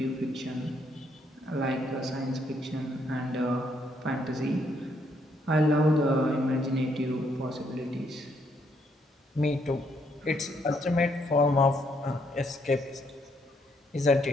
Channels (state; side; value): normal; both; correlation 0.72